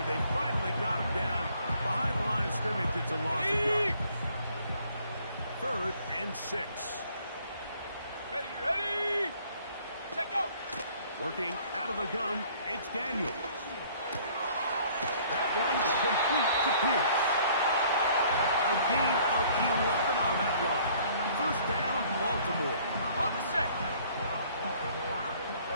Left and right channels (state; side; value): inverted; both; correlation -0.58